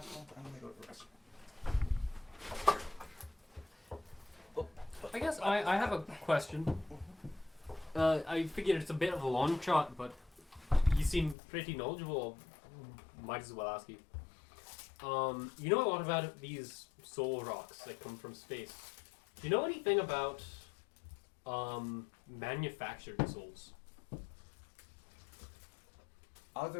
I'm gonna go to the restaurant. I guess I have a question. I figured it's a bit of a long shot, but you seem pretty knowledgeable. Might as well ask you. You know a lot about these soul rocks that come from space. Do you know anything about manufactured souls?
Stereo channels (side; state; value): right; drops out; at 11.4 s